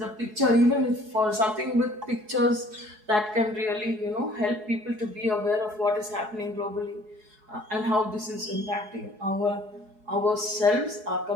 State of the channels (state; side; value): late; left; 4.7 ms